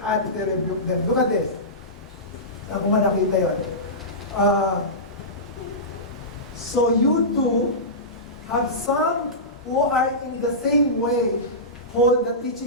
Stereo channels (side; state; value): both; normal; correlation -0.18